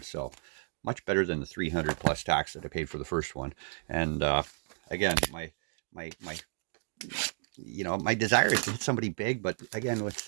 So much better than the 300 plus tax that I paid for the first one. And again, my my desire is to hit somebody big, but again,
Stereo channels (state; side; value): silent; left; digital silence